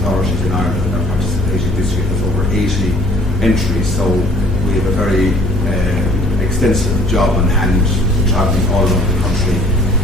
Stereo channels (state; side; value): normal; both; correlation 0.55